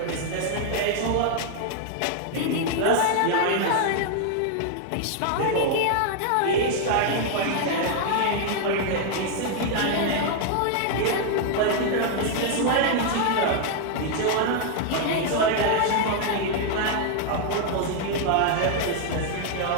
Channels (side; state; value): both; different; correlation 0.00